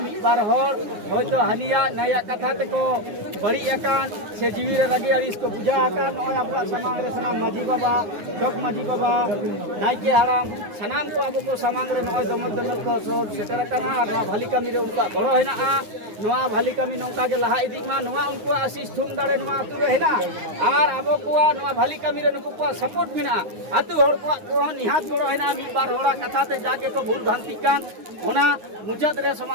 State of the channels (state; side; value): late; left; 9.7 ms